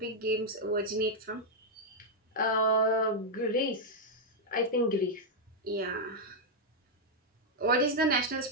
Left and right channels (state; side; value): normal; both; correlation -0.03